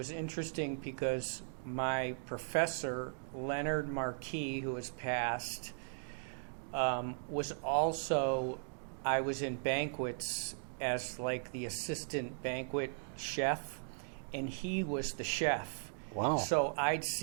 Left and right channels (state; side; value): silent; left; digital silence